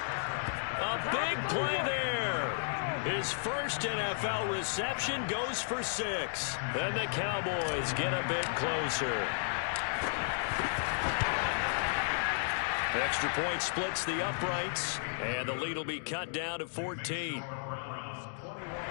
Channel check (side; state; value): right; silent; digital silence